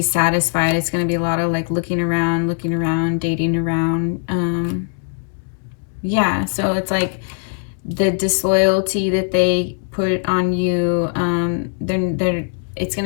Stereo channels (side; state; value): right; silent; digital silence